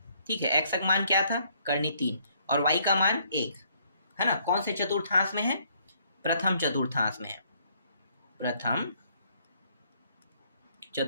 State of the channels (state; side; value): inverted; both; correlation -0.67